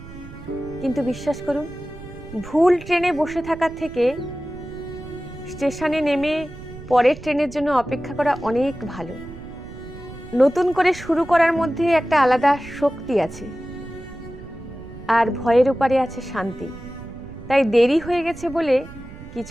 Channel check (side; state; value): right; noise; rumble, 15 dB below the sound